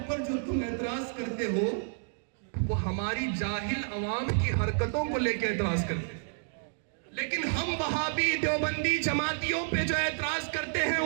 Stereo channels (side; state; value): left; silent; digital silence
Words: جو تم اعتراض کرتے ہو وہ ہماری جاہل عوام کی حرکتوں کو لے کے اعتراض کرتے ہیں. لیکن ہم وہابی دیوبندی جماعتیوں پہ جو اعتراض کرتے ہیں